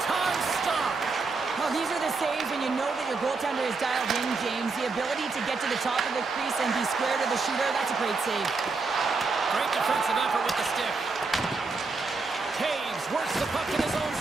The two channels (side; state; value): left; quieter; 4.1 dB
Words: stop. Well, these are the saves when you know that your goaltender is dialed in, James. The ability to get to the top of the crease and be square to the shooter, that's a great save. Great defensive effort with the stick. Taves works the puck in his own